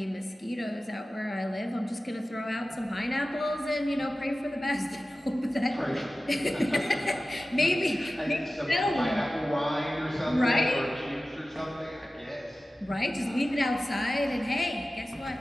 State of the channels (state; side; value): normal; both; correlation 0.96